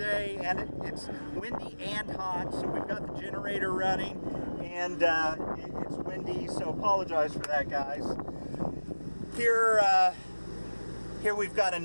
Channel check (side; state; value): both; inverted; correlation -1.00